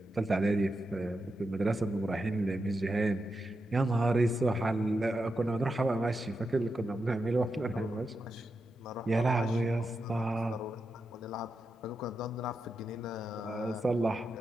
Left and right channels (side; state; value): both; normal; correlation 0.87